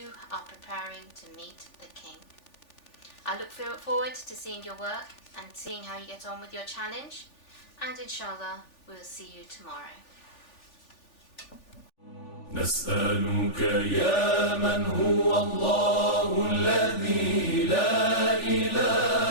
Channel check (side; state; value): right; late; 3.4 ms